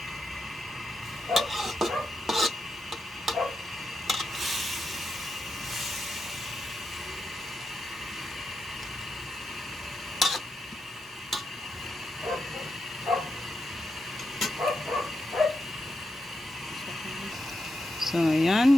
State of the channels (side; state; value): both; normal; correlation 0.86